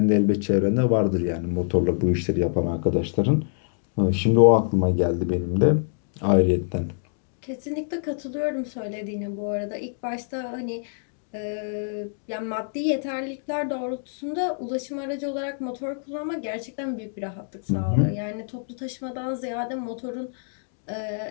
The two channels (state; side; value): silent; right; digital silence